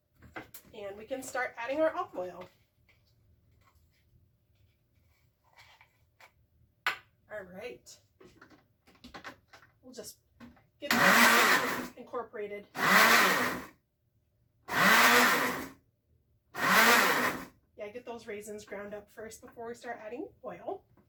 And we can start adding our olive oil. All right. We'll just get that incorporated. Yeah, get those raisins ground up first before we start adding oil.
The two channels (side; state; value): both; identical; correlation 1.00